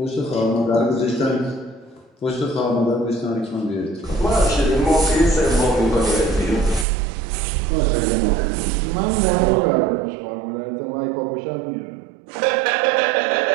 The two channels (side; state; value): left; drops out; at 6.9 s